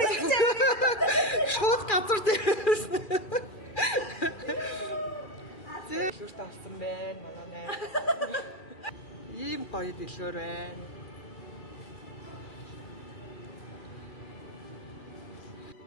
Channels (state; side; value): late; right; 2.4 ms